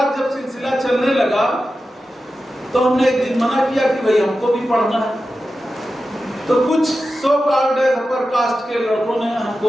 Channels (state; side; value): normal; both; correlation 0.92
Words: जब सिलसिला चलने लगा तो हमने एक दिन मना किया कि भाई हमको भी पढ़ना है। तो कुछ सो कॉल्ड अपर कास्ट के लड़कों ने